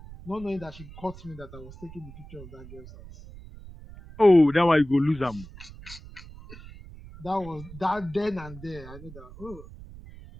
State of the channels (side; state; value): right; noise; rumble, 17 dB below the sound